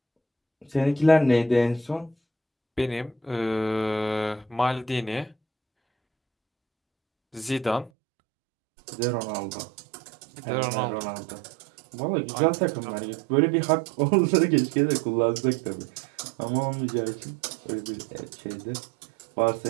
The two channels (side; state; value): left; drops out; at 7.9 s